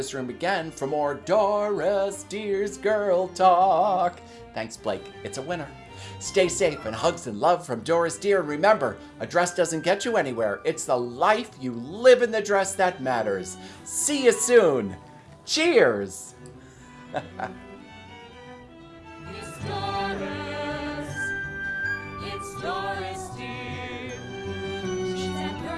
Room again for more Doris Deer's Girl Talk. Thanks, Blake. It's a winner. Stay safe, and hugs and love from Doris Deer. And remember, a dress doesn't get you anywhere. It's the life you live in the dress that matters. See you soon. Cheers. It's Doris. It's Doris Deer. She's that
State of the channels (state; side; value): identical; both; correlation 1.00